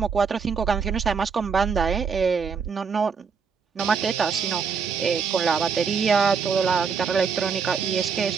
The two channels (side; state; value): left; quieter; 5.9 dB